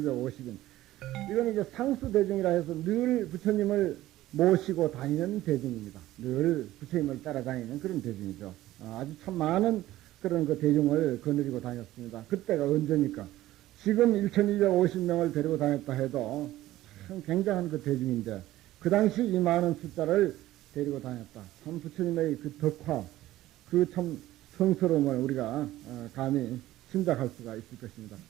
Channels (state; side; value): quieter; left; 15.4 dB